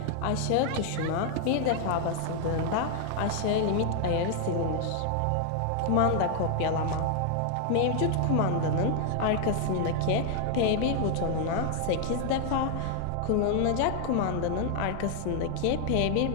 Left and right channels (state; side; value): different; both; correlation 0.00